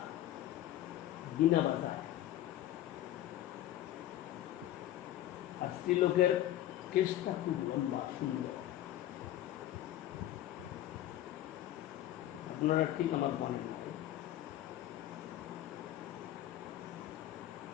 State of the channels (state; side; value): quieter; right; 13.3 dB